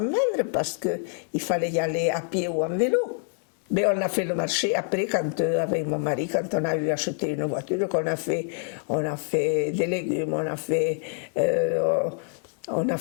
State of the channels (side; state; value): right; silent; 56 dB below the other